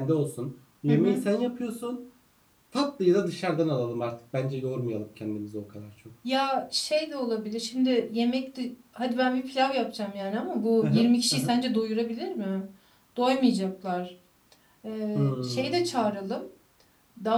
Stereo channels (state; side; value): identical; both; correlation 1.00